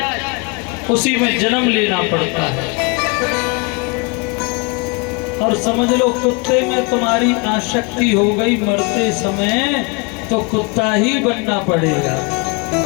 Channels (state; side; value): quieter; right; 30.2 dB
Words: उसी में जन्म लेना पड़ता है। और समझ लो कुत्ते में तुम्हारी आसक्ति हो गई मरते समय, तो कुत्ता ही बनना पड़ेगा।